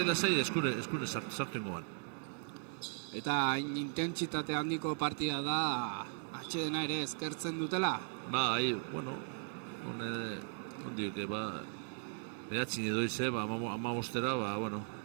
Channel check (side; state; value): left; silent; 53 dB below the other